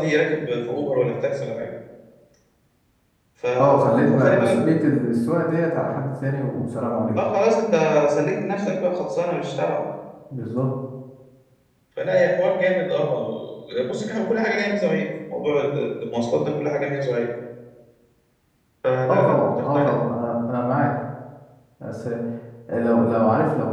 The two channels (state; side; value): identical; both; correlation 1.00